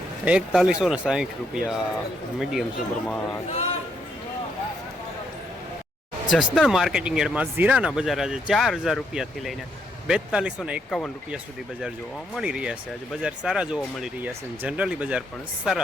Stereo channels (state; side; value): normal; both; correlation 0.75